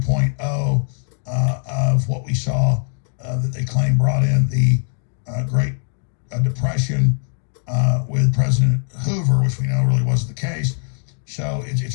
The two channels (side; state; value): right; silent; 65 dB below the other